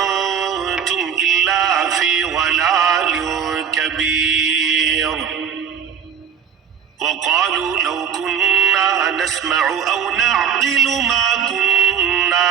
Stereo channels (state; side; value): quieter; left; 7.8 dB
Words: إلا في ضلال كبير وقالوا لو كنا نسمع أو نعقل ما